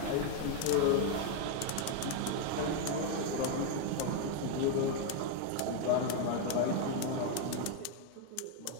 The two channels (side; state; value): both; different; correlation 0.01